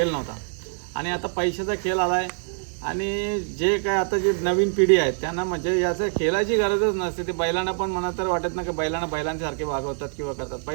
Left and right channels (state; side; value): silent; left; digital silence